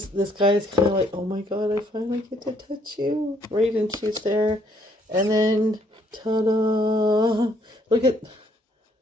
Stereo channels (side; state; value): both; normal; correlation 0.67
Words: guy is kind of like, oh my God, I finally get to touch you. Right, and she's there. And then, ta-da! Look at...